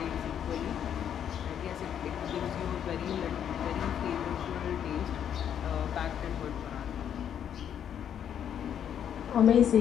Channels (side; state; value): right; quieter; 9.1 dB